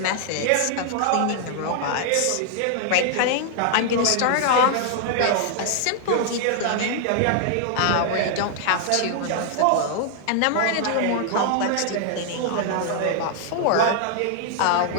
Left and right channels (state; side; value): different; both; correlation 0.00